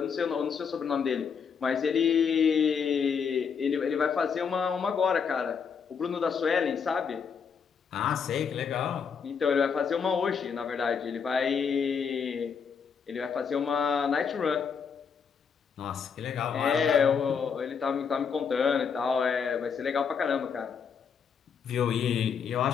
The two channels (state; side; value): quieter; right; 6.4 dB